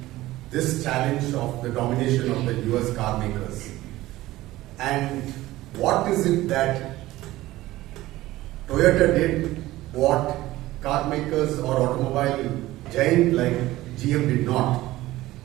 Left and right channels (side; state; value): left; quieter; 17.0 dB